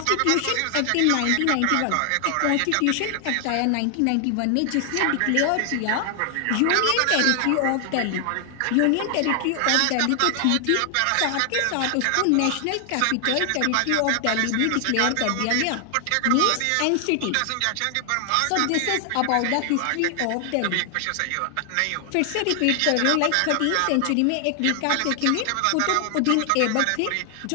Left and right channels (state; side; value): different; both; correlation 0.00